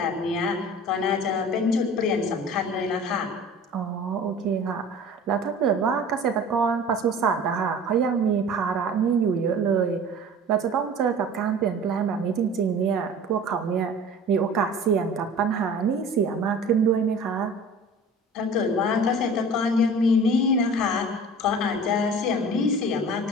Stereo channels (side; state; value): both; normal; correlation 0.42